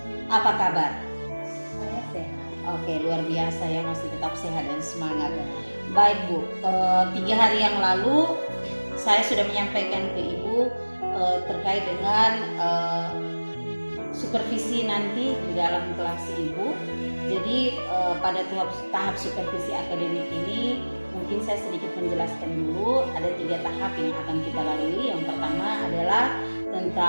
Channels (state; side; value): inverted; both; correlation -1.00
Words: Apa kabar? Saya sehat. Oke, luar biasa ya, masih tetap sehat dan semangat. Baik Bu, 3 hari yang lalu saya sudah menyampaikan ke Ibu terkait dengan supervisi nanti di dalam kelas Ibu. Jadi pada tahap supervisi akademik ini mungkin saya sedikit menjelaskan dulu. Ada 3 tahap yang akan kita lalui. Yang pertama adalah